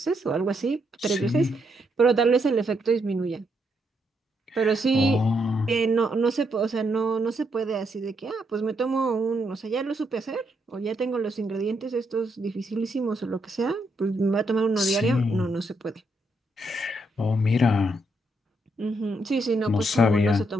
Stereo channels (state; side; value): normal; both; correlation 0.77